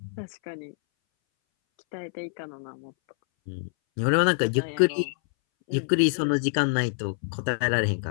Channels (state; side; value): silent; right; 61 dB below the other